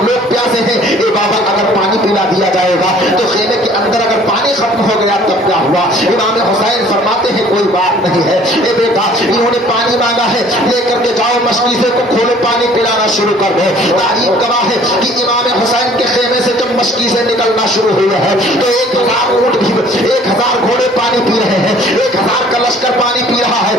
لوگ پیاسے ہیں، اے بابا اگر پانی پلا دیا جائے گا تو خیمے کے اندر اگر پانی ختم ہو گیا تب کیا ہوا؟ امام حسین فرماتے ہیں کوئی بات نہیں ہے، اے بیٹا انہوں نے پانی مانگا ہے، لے کر کے جاؤ مشکیزے کو کھولو پانی پلانا شروع کر دو۔ تاریخ گواہ ہے کہ امام حسین کے خیمے سے جب مشکیزیں نکلنا شروع ہوئے ہیں تو 1000 اونٹ بھی 1000 گھوڑے پانی پی رہے ہیں، 1000 کا لشکر پانی پی رہا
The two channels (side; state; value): both; normal; correlation 0.54